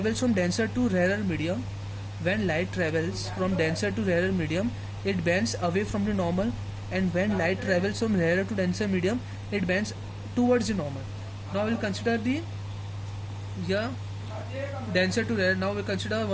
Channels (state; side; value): identical; both; correlation 1.00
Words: from denser to rarer medium, it bends away from the normal, and when light travels from rarer to denser medium, it bends towards the normal. Now we'll consider the denser to rarer. Now we'll consider